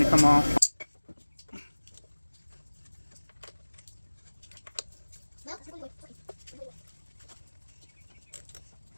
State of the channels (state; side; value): inverted; both; correlation -1.00